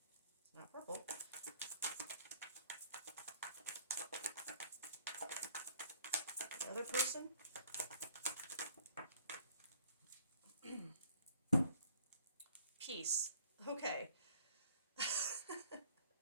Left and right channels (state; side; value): inverted; both; correlation -0.56